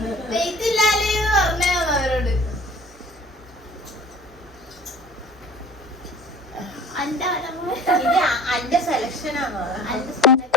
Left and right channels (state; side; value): normal; both; correlation 0.45